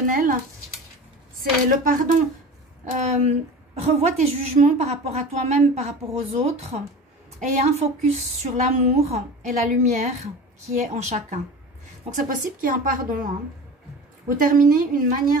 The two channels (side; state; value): both; normal; correlation 0.35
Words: c'est le pardon. Revois tes jugements par rapport à toi-même, par rapport aux autres. Et un focus sur l'amour et la lumière qui est en chacun. Donc, c'est possible qu'il y ait un pardon. Hein. Vous terminez une